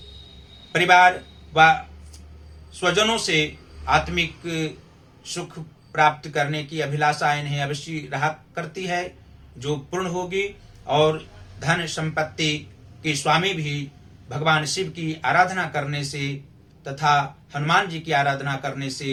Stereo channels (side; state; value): both; identical; correlation 1.00